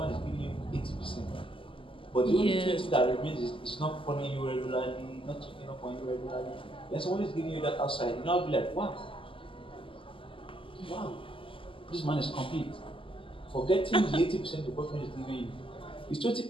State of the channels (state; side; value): late; right; 0.25 ms